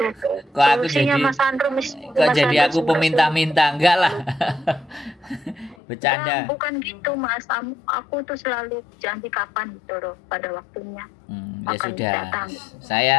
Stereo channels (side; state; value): right; drops out; at 5.8 s